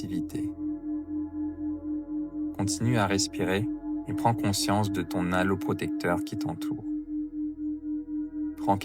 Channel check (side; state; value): both; identical; correlation 1.00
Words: Continue à respirer et prends conscience de ton halo protecteur qui t'entoure. Prends